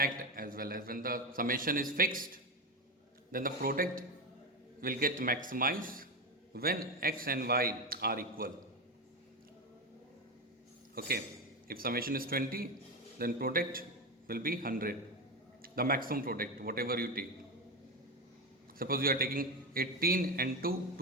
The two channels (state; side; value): normal; both; correlation 0.15